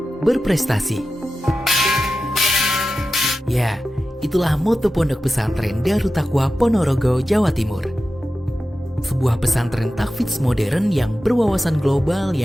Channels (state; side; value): normal; both; correlation 0.93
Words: berprestasi. Ya, itulah moto Pondok Pesantren Darut Taqwa Ponorogo, Jawa Timur. Sebuah pesantren tahfidz modern yang berwawasan global